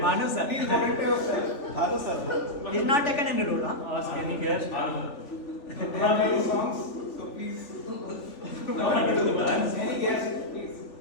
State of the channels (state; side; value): late; right; 3.4 ms